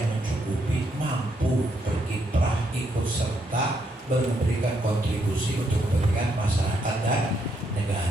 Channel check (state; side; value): normal; both; correlation 0.76